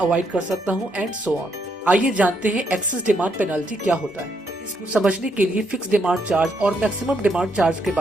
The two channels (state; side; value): normal; both; correlation 0.75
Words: कर सकता हूँ एंड सो ऑन। आइए जानते हैं एक्सेस डिमांड पेनाल्टी क्या होता है। इसको समझने के लिए फिक्स डिमांड चार्ज और मैक्सिमम डिमांड चार्ज के